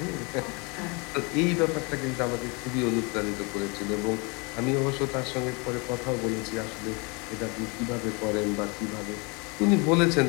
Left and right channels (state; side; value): quieter; right; 30.2 dB